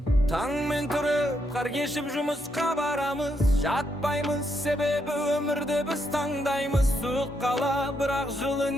Таңмен тұрып қар кешіп жұмысқа барамыз, жатпаймыз, себебі өмірді біз таңдаймыз. Суық қала бірақ жылы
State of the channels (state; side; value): normal; both; correlation 0.78